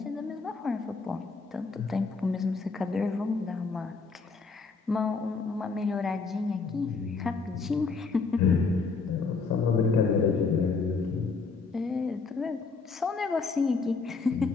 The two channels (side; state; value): right; quieter; 4.5 dB